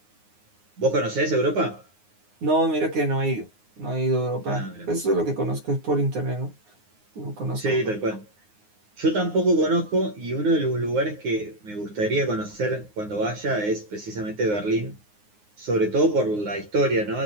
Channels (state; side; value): late; left; 9.6 ms